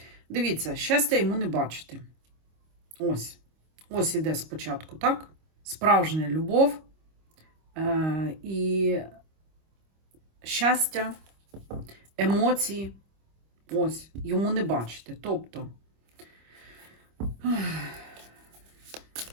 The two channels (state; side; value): late; left; 25 ms